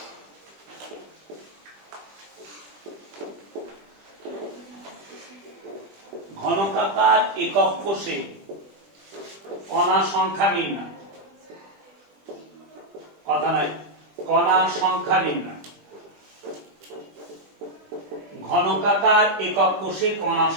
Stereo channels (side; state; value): left; late; 20 ms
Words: ঘনকাকার একক কোষে কণা সংখ্যা নির্ণয়, কথা নয়, কণা সংখ্যা নির্ণয়, ঘনকাকার একক কোষে কণা